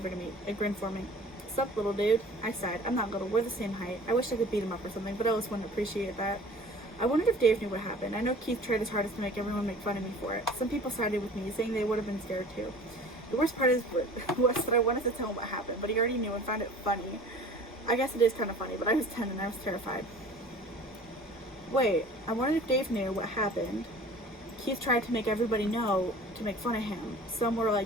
to me, a grin forming. Sup, little dude? I sighed. I'm not little. We're the same height. I wish I could beat him up or something, but Ellis wouldn't appreciate that. I wondered if Dave knew what happened. I know Keith tried his hardest to make everyone make fun of me for it. Some people sided with me, saying they would have been scared too. The worst part was that I wanted to tell him what happened, but he already knew and found it funny. I guess it is kind of funny, but I was 10 and I was terrified. Wait, I wondered if Dave knew what happened. Keith tried to make everybody know to make fun of him. Some were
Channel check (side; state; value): both; normal; correlation 0.45